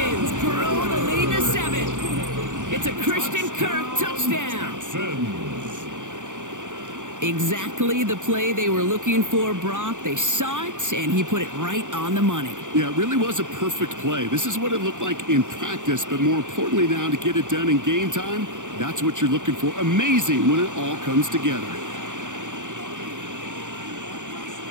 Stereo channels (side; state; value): left; late; 0.86 ms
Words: grow the lead to 7. It's a Christian Kirk touchdown. Exactly the play they were looking for, Brock. They saw it, and he put it right on the money. Yeah, it really was a perfect play. This is what it looked like in practice, but more importantly now to get it done in game time, that's what you're looking for. Amazing when it all comes together.